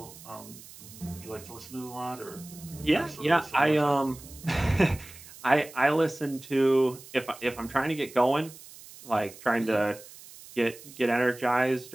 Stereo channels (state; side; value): noise; right; hiss, 18 dB below the sound